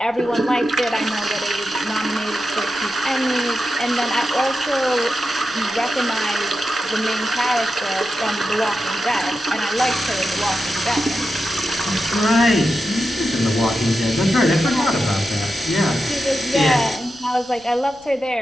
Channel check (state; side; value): noise; left; rumble, 28 dB below the sound